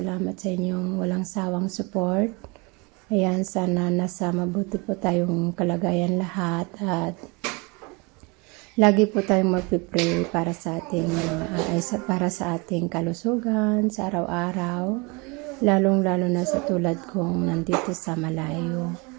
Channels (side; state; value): left; quieter; 28.4 dB